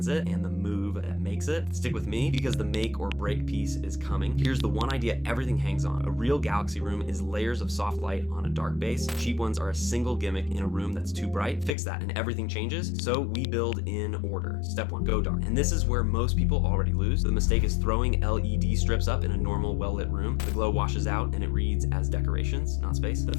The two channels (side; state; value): right; drops out; at 11.7 s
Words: it and the move that makes it. Stick with me because the make or break piece is coming. Here's the one idea everything hangs on. A real Galaxy room is layers of soft light on a dark base. Cheap ones are a single gimmick in a room that's too bright. Fix that and everything changes. So we build in order. Step 1, go dark. And this is where most people already lose. The mistake is throwing LED strips up in a normal well-lit room. The glow washes out and it reads as decorations, not space. The